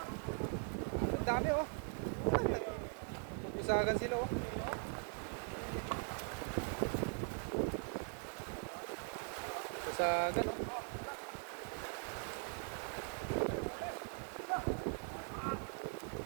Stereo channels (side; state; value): left; silent; 50 dB below the other